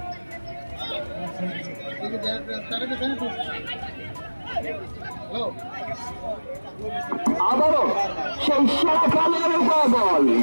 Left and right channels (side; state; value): both; inverted; correlation -1.00